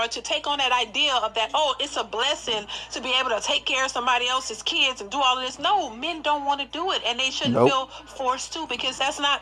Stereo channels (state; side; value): identical; both; correlation 1.00